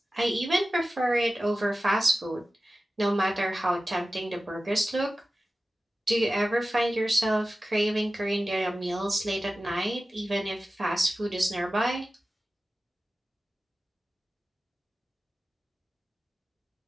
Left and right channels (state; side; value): normal; both; correlation 0.95